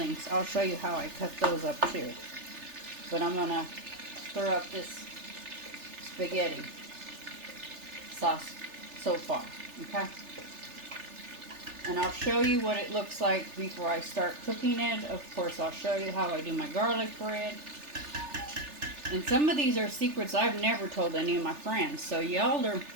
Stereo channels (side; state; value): left; late; 3.4 ms